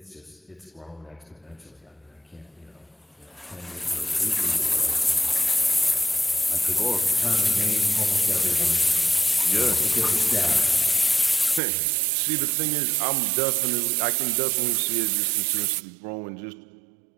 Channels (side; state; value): left; drops out; at 11.6 s